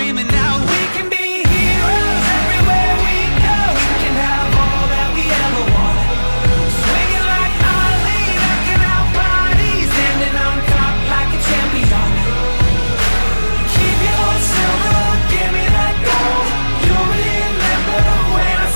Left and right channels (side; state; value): both; inverted; correlation -1.00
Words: out, we can be heroes everywhere we go. We can have all that we ever want. Swinging like Ali, knocking out bodies, standing on top like a champion. Keep your silver, give me that gold. You'll remember when I